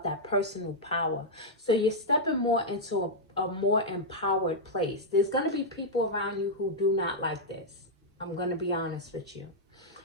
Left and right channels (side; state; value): both; normal; correlation -0.05